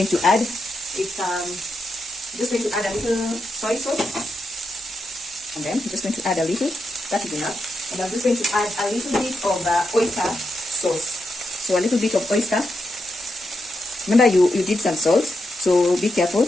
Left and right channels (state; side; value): normal; both; correlation 0.85